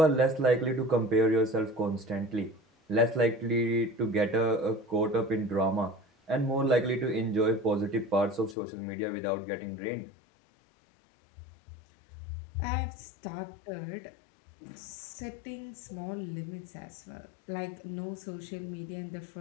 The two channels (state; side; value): drops out; right; at 8.6 s